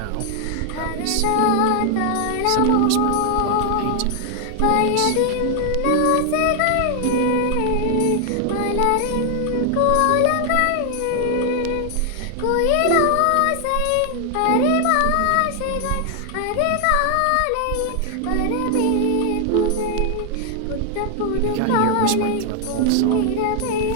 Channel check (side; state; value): both; different; correlation 0.00